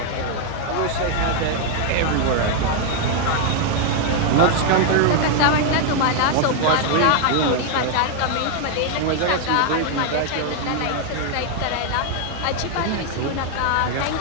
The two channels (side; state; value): both; different; correlation 0.00